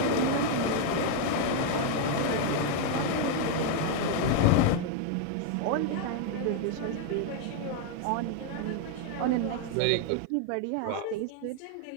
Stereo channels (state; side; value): different; both; correlation 0.00